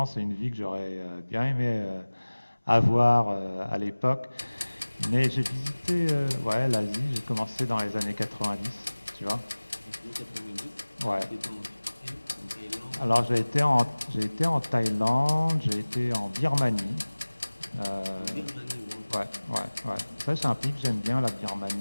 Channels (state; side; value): inverted; both; correlation -1.00